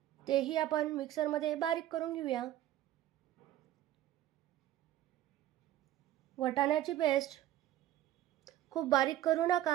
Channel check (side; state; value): left; quieter; 13.1 dB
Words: तेही आपण मिक्सरमध्ये बारीक करून घेऊया. वाटाण्याची पेस्ट खूप बारीक करू